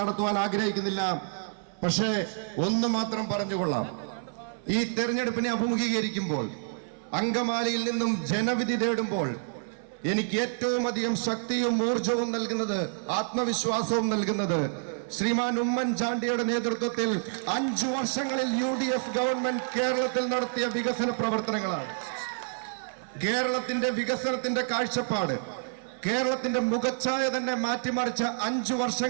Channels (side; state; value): left; silent; 59 dB below the other